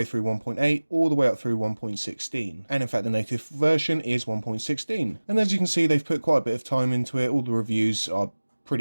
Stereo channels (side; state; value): both; inverted; correlation -1.00